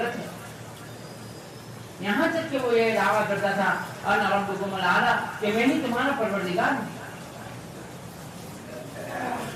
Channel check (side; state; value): both; identical; correlation 1.00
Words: ہے؟ یہاں تک کہ وہ یہ دعویٰ کرتا تھا انا ربکم الاعلی، کہ میں ہی تمہارا پروردگار ہوں۔